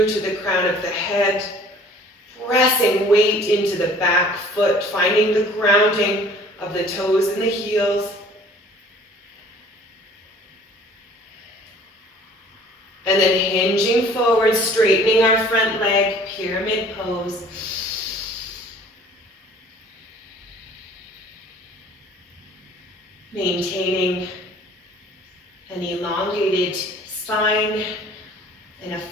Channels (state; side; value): normal; both; correlation 0.51